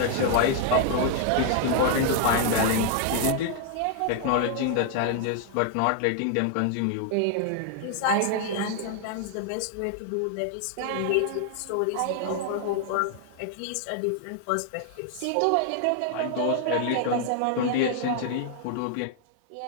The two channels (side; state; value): both; different; correlation 0.00